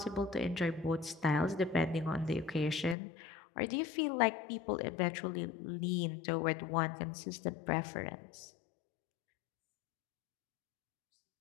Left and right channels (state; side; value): drops out; right; at 3.0 s